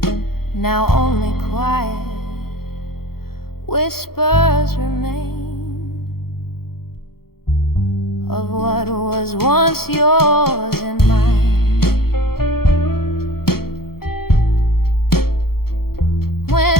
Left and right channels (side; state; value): right; late; 0.94 ms